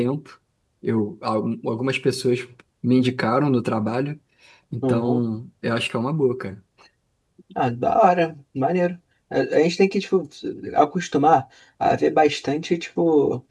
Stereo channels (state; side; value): identical; both; correlation 1.00